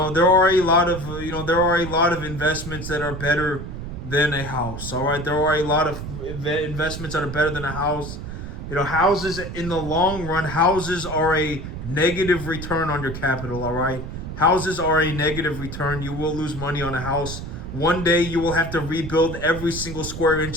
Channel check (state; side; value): noise; right; rumble, 8 dB below the sound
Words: a lot of investments that are better than a house. All right, there are a lot of investments that are better than a house. Houses in the long run, houses are a negative return on your capital, all right? Houses are a negative return. You will lose money on a house. One day you will have to rebuild every single square